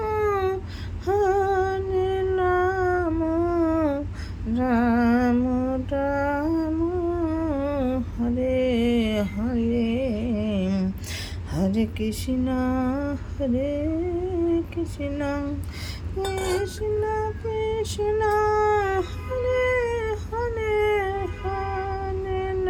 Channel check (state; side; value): identical; both; correlation 1.00